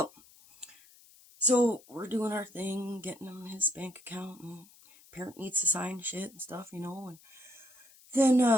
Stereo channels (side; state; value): left; noise; hiss, 25 dB below the sound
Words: so we're doing our thing, getting him his bank account, and parent needs to sign shit and stuff, and